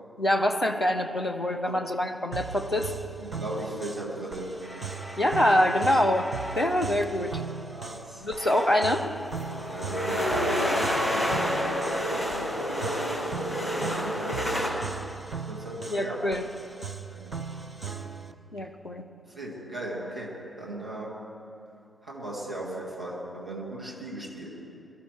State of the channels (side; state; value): both; normal; correlation 0.77